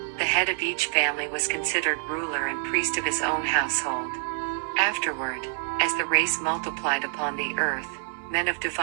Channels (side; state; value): left; silent; digital silence